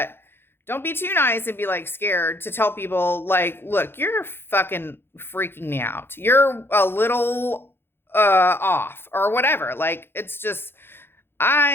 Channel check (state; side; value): late; right; 0.11 ms